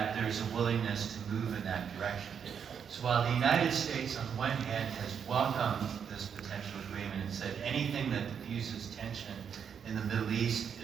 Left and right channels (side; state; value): left; quieter; 7.4 dB